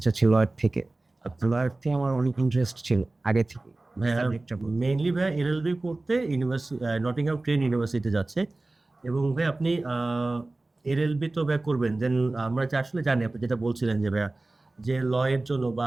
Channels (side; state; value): left; quieter; 3.0 dB